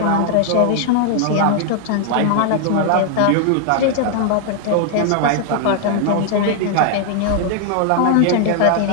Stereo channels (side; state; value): both; different; correlation 0.00